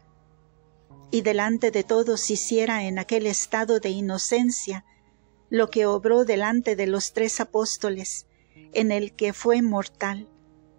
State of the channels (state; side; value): silent; left; digital silence